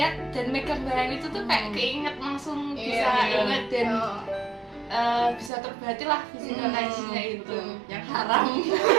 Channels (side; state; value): left; drops out; at 5.5 s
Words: dan megang barang itu tuh kayak keinget langsung, bisa inget dan bisa terobati lah physical touch-nya itu yang haram.